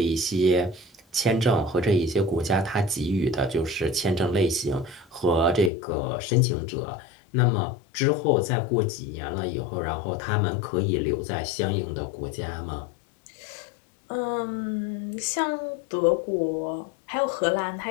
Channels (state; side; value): drops out; right; at 5.7 s